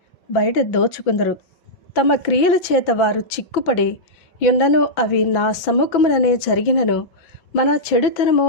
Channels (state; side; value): late; right; 5.9 ms